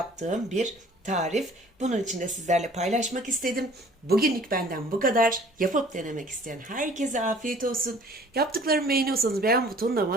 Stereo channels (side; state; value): both; normal; correlation 0.52